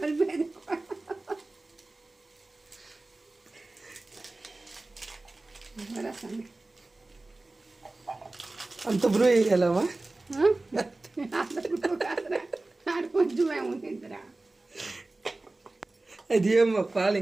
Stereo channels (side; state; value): left; quieter; 3.0 dB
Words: కలిపేది. అంత బ్రూ వేయాలమ్మా? కొంచెమే ఉంటుందిరా. అది ఏమో పాలు